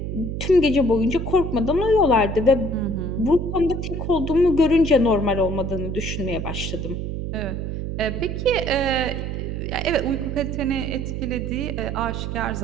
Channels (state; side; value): noise; right; hum, 4 dB below the sound